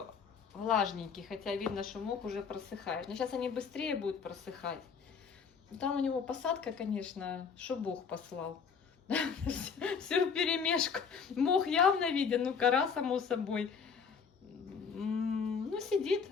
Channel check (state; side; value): quieter; right; 6.1 dB